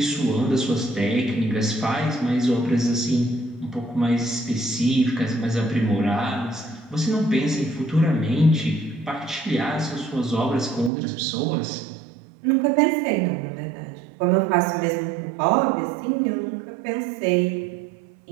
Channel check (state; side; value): drops out; left; at 10.9 s